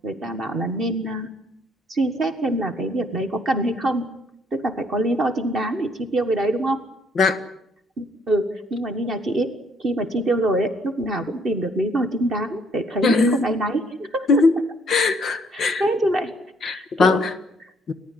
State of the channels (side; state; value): both; normal; correlation 0.65